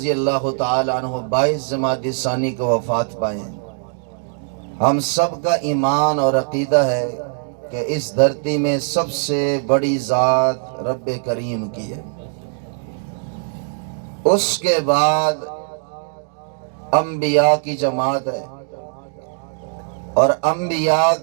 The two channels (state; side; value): silent; left; digital silence